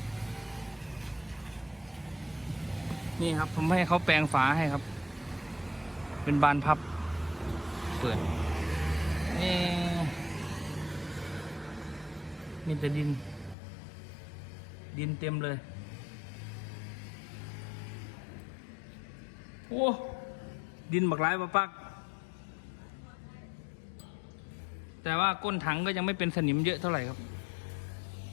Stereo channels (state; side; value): drops out; right; at 13.6 s